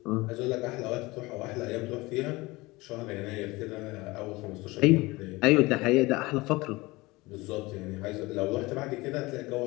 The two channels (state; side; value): quieter; right; 21.9 dB